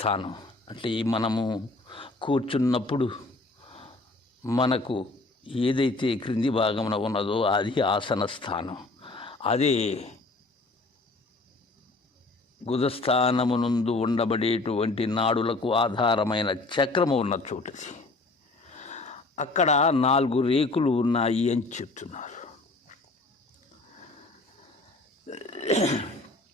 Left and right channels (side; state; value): right; quieter; 3.2 dB